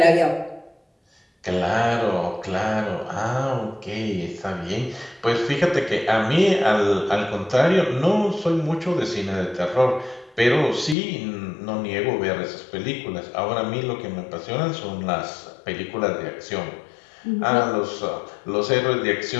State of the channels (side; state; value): right; drops out; at 11.0 s